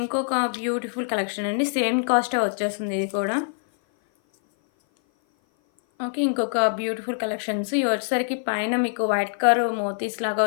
బ్యూటిఫుల్ కలెక్షన్ అండి. సేమ్ కాస్టే వచ్చేస్తుంది ఇది కూడా. ఓకే. ఇంకొక బ్యూటిఫుల్ కలెక్షన్స్ ఇవి వచ్చేసరికి పైన మీకు వైట్ కలర్ మోతీస్ లాగా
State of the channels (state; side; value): silent; right; 56 dB below the other